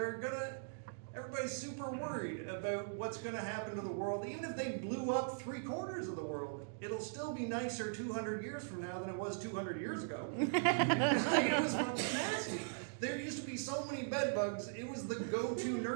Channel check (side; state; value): left; silent; digital silence